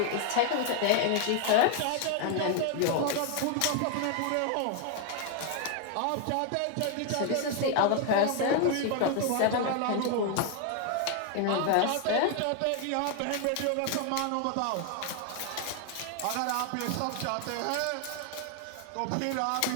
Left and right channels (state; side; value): different; both; correlation 0.00